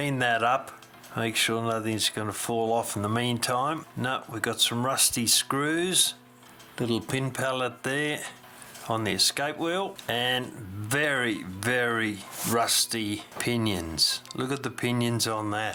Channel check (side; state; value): both; identical; correlation 1.00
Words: that up, make sure nothing's going to fall off in the meantime. No, we've got some rusty screws, little pin pallet there on the escape wheel, and very, very rusty pinions. Look at the pinions on